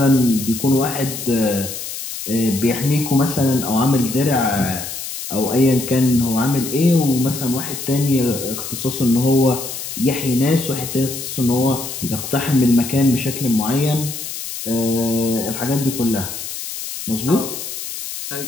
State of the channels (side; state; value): left; noise; hiss, 8 dB below the sound